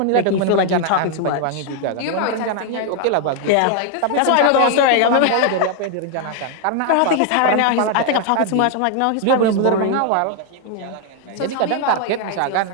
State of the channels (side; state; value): both; different; correlation 0.00